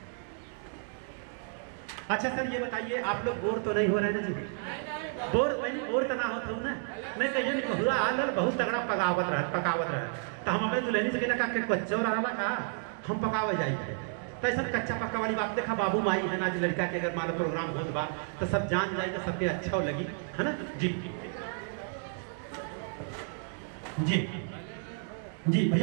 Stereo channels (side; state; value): left; silent; 57 dB below the other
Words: अच्छा सर ये बताइए, आप लोग बोर तो नहीं हो रहे ना जी? बोर वही बोर तो ना होता हूँ ना? नहीं कहिए नहीं बहुरा आल बहुत तगड़ा पकावत रहा तो हम अपने दुल्हनी से कहना का कच्चो रहा का हम पकावे जाए थे। तो ऐसा कच्चा पक्का वाली बात देखा, बाबू माई है ना, लड़का के अगर मान प्रोग्राम होत बा तो सब जान जाए तो सबके अच्छा लगी है ना जी। जी जी